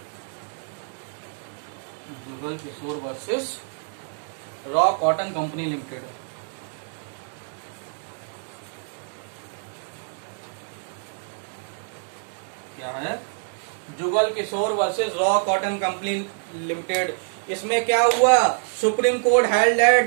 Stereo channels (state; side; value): silent; left; 61 dB below the other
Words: versus Raw Cotton Company Limited. क्या है, Jugal Kishore versus Raw Cotton Company Limited. इसमें क्या हुआ, Supreme Court held